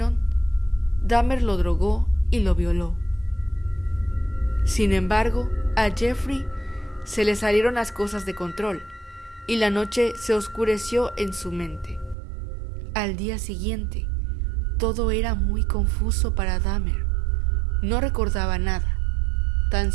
Dahmer lo drogó y lo violó. Sin embargo, a Jeffrey se le salieron las cosas de control y la noche se oscureció en su mente. Al día siguiente, todo era muy confuso para Dahmer. No recordaba nada, tan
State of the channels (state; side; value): drops out; left; at 12.2 s